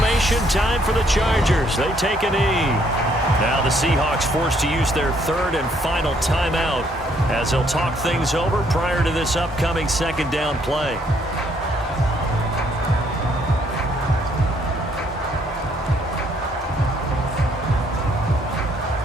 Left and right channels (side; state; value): both; normal; correlation 0.68